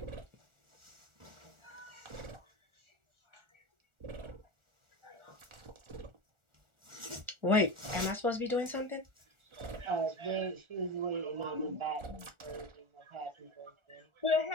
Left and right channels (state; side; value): late; left; 1.4 ms